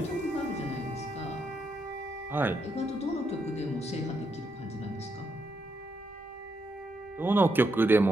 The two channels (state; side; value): normal; both; correlation 0.80